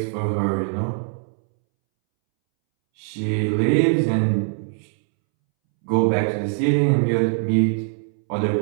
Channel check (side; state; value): left; silent; 64 dB below the other